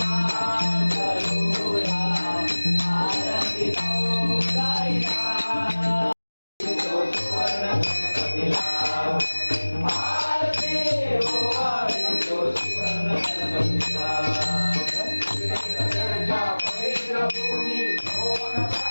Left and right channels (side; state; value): both; inverted; correlation -1.00